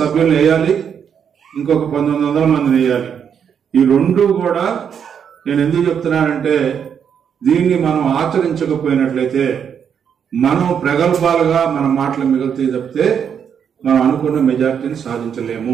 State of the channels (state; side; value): quieter; left; 7.7 dB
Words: వేయాలి. ఇంకొక 1900 మందిని వేయాలి. ఈ రెండు కూడా నేను ఎందుకు చెప్తున్నానంటే, దీన్ని మనం ఆచరించకపోయినట్లయితే మనం ప్రగల్భాలుగా మన మాటలు మిగులుతాయి తప్పితే మనం అనుకున్న మెజార్టీని సాధించలేము.